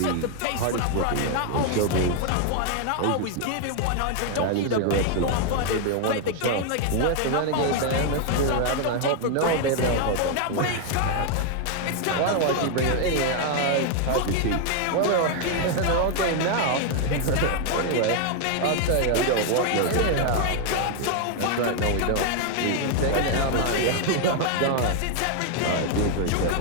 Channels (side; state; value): both; different; correlation 0.00